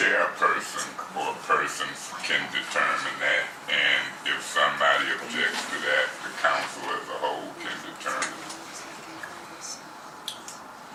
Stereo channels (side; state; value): both; identical; correlation 1.00